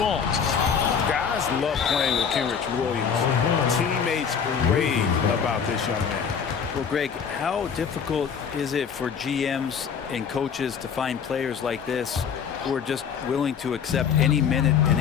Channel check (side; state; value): right; quieter; 7.0 dB